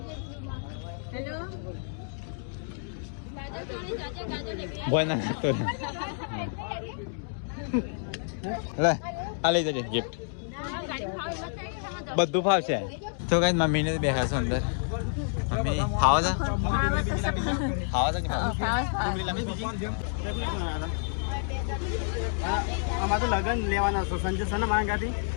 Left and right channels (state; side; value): silent; right; digital silence